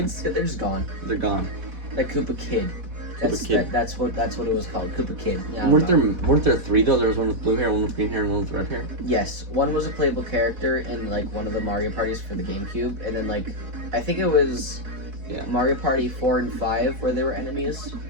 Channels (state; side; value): late; left; 4.1 ms